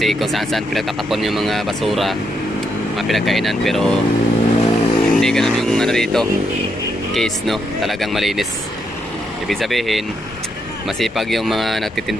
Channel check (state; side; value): normal; both; correlation 0.78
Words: kung saan-saan pinagtatapon yung mga basura, mga pinagkainan, pero hindi ganun yung ano dito. Case, no? Talagang malinis. Ibig sabihin, masipag yung mga